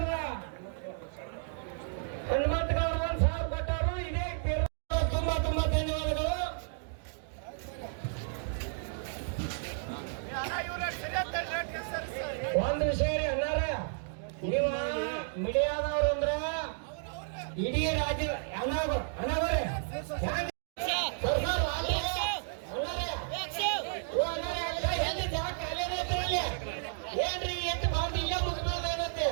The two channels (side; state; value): left; silent; digital silence